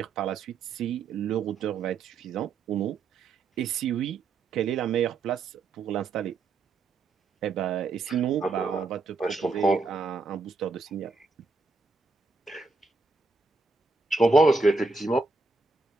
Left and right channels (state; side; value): quieter; left; 3.9 dB